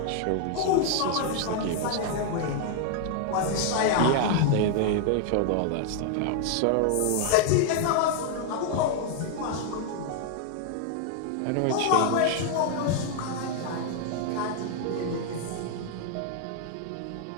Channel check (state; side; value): different; both; correlation 0.00